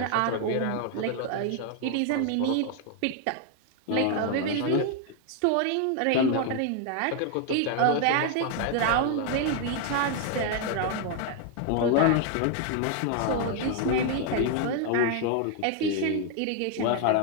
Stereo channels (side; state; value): both; different; correlation 0.00